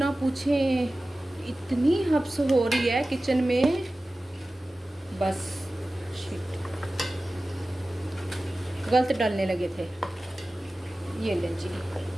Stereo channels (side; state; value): both; normal; correlation 0.96